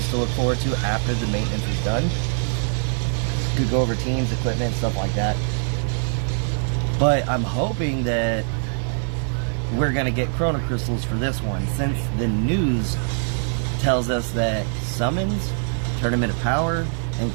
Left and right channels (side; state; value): left; silent; 63 dB below the other